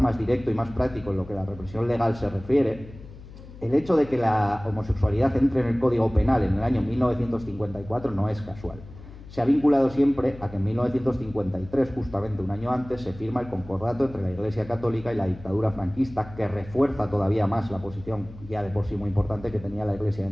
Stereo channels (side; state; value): left; noise; hum, 17 dB below the sound